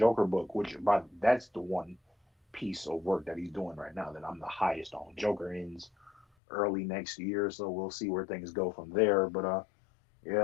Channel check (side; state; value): right; drops out; at 6.2 s